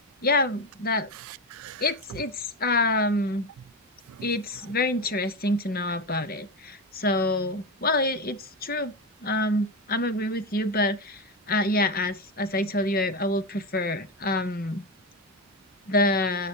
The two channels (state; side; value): normal; both; correlation 0.15